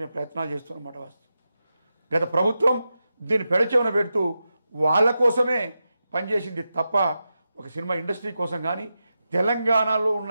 మేము ప్రయత్నాలు చేస్తున్నమాట. వాస్తవం గత ప్రభుత్వం దీన్ని పెడచెవిన పెడుతూ వాళ్ళ కోసమే పనిచేసింది తప్ప ఒక సినిమా ఇండస్ట్రీ కోసం కానీ తెలంగాణలో ఉన్న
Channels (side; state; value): both; inverted; correlation -0.90